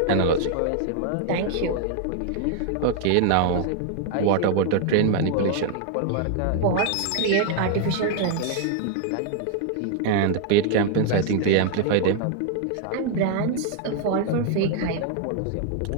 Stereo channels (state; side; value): different; both; correlation 0.00